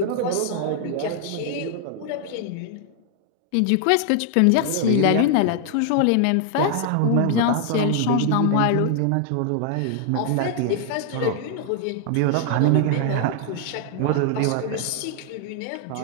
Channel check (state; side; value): different; both; correlation 0.00